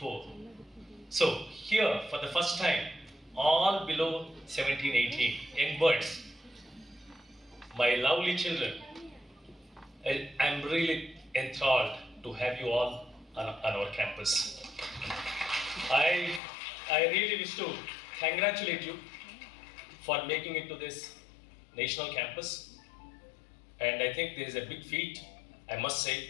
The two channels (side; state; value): right; drops out; at 16.4 s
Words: So here, for the first time, all below 17, 18, young birds, my lovely children, I'm really enthralled to have you all on our campus. I really wish to congratulate you for making it to this national campus. And I think there is a big feat, I must